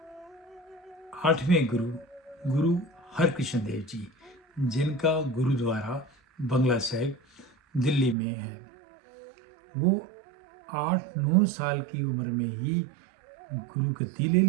8वें गुरु हरकृष्ण देव जी, जिनका गुरुद्वारा बंगला साहिब दिल्ली में है, वो 8-9 साल की उम्र में ही गुरु गद्दी ले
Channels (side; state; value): left; drops out; at 8.2 s